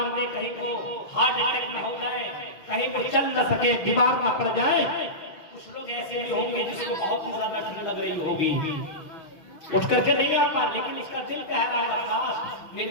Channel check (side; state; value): right; late; 6.3 ms